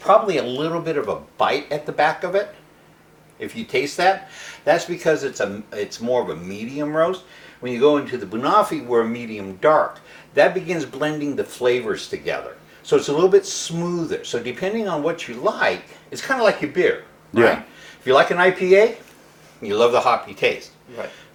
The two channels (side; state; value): both; identical; correlation 1.00